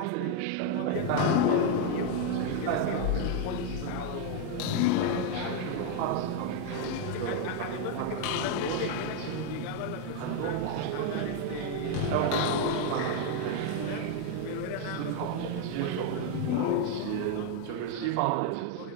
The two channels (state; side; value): different; both; correlation 0.01